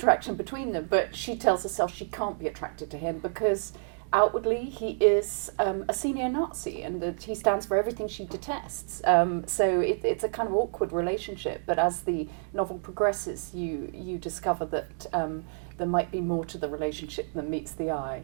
between them. But she tells herself she can't be attracted to him because outwardly he is a senior Nazi, and that he stands for everything she detests. So it's a kind of awkward relationship. But as the novel progresses, you discover that there might be more to the relationship than meets the eye,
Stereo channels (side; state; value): left; silent; digital silence